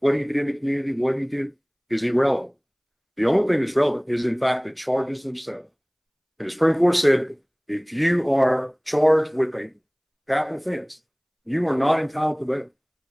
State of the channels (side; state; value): both; identical; correlation 1.00